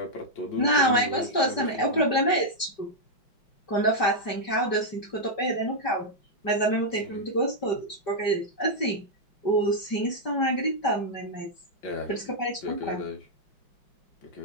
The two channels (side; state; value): right; late; 5.1 ms